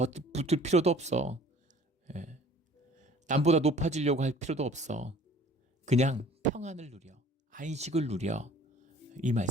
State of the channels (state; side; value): normal; both; correlation 0.51